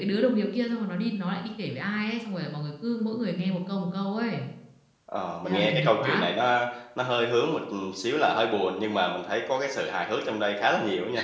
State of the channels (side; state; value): both; identical; correlation 1.00